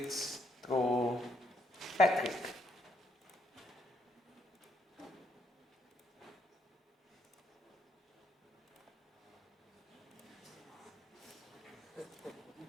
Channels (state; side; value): normal; both; correlation 0.74